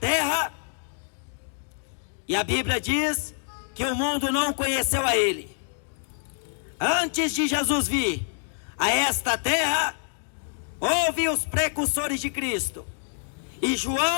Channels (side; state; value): right; silent; digital silence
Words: e a Bíblia diz que o mundo não conheceu a Ele. Antes de Jesus vir a esta terra, houve os precursores de Cristo, e